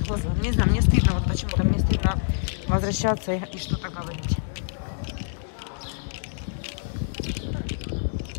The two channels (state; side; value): silent; right; digital silence